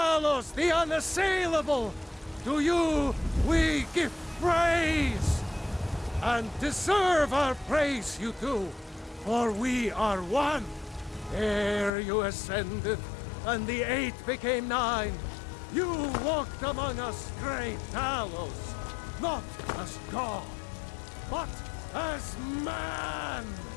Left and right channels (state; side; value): drops out; right; at 11.9 s